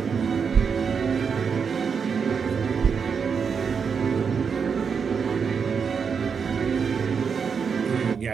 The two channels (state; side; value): quieter; left; 6.2 dB